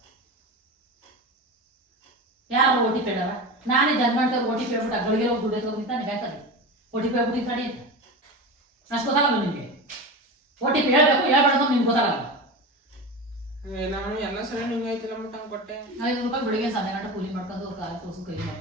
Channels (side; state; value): both; normal; correlation 0.26